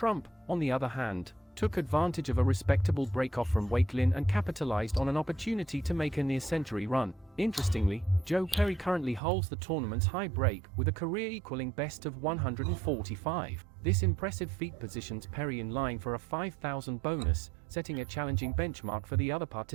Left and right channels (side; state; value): left; drops out; at 9.2 s